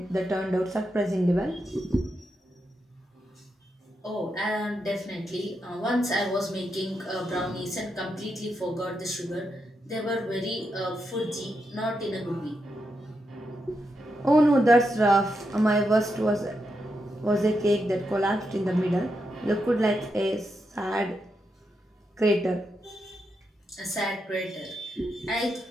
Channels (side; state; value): both; normal; correlation 0.84